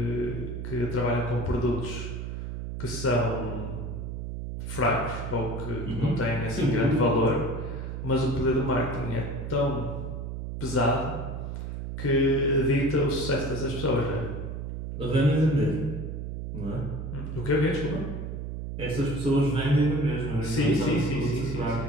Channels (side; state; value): right; noise; hum, 6 dB below the sound